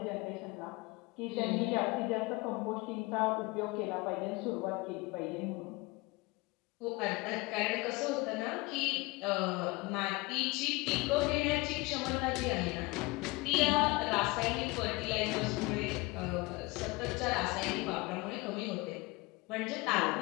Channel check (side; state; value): right; quieter; 24.2 dB